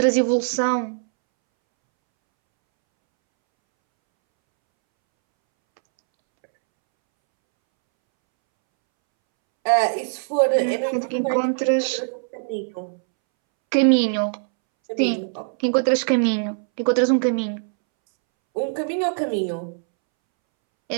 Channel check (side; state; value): left; silent; 64 dB below the other